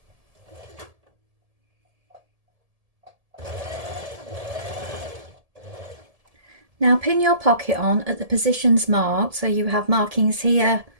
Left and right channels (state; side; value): late; left; 1.7 ms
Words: Now pin your pocket on at the positions marked, so you have markings here